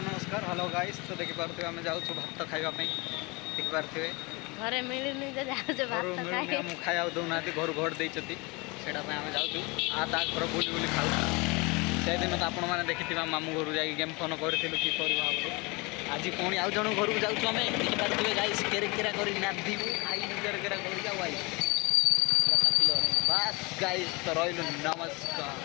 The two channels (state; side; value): quieter; right; 26.9 dB